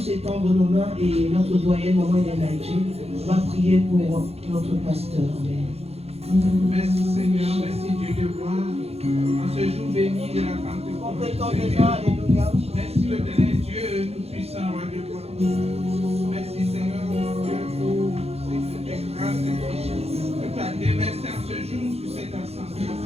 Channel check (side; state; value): left; late; 0.30 ms